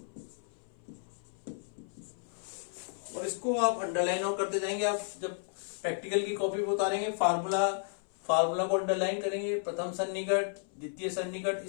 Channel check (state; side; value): silent; right; 56 dB below the other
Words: और इसको आप अंडरलाइन और करते जाएंगे। आप जब प्रैक्टिकल की कॉपी पे उतारेंगे फार्मूला को अंडरलाइन करेंगे, प्रथम सन्निकट द्वितीय सन्निकट